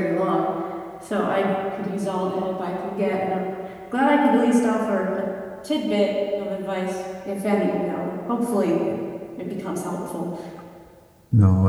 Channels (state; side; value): identical; both; correlation 1.00